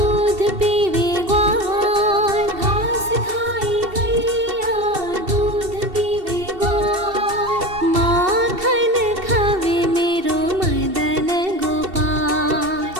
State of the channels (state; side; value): late; left; 2.7 ms